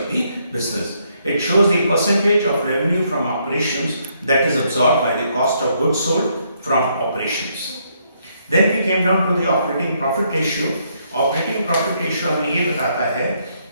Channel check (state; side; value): inverted; both; correlation -0.73